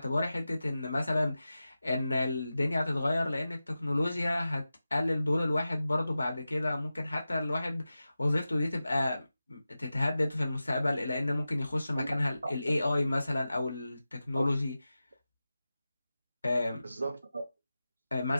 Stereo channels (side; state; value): both; inverted; correlation -0.94